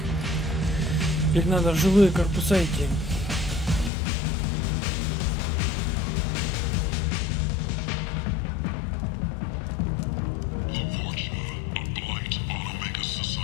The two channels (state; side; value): drops out; right; at 3.9 s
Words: Теперь надо в жилые корпуса идти.